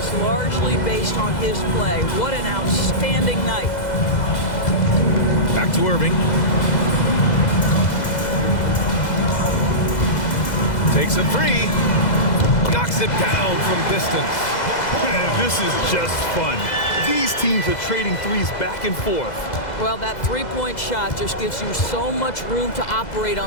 largely based on his play. What an outstanding night. Back to Irving. Takes a 3. Knocks it down from distance. Man, this is just fun. These teams are trading threes back and forth. Well, that three-point shot just gives you so much room to operate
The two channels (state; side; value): late; right; 2.0 ms